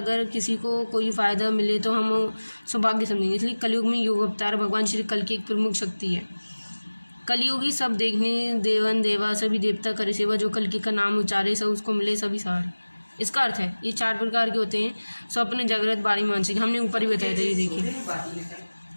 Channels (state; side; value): inverted; both; correlation -1.00